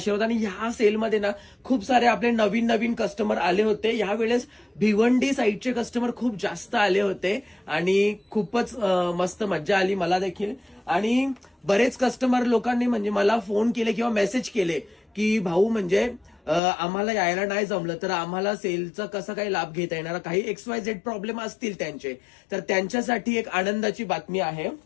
आणि ह्या सेलमध्ये ना खूप सारे आपले नवीन नवीन कस्टमर आले होते. यावेळेस भिवंडी साईडचे कस्टमर खूप जास्त आले होते आणि खूपच मस्त मज्जा आली मला देखील. आणि बरेच कस्टमर लोकांनी म्हणजे मला फोन केले किंवा मेसेज केले की भाऊ म्हणजे आम्हाला यायला नाही जमलं तर आम्हाला सेलचा कसा काही लाभ घेता येणार, काही XYZ प्रॉब्लेम असतील त्यांचे, तर त्यांच्यासाठी एक आनंदाची बातमी आहे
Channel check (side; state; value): right; drops out; at 16.6 s